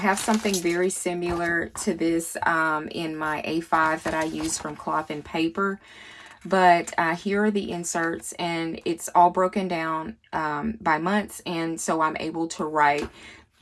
something very similar to this in my A5 that I use from Cloth and Paper. But here are the inserts, and it's all broken down by months. And so I'm able to write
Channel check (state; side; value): identical; both; correlation 1.00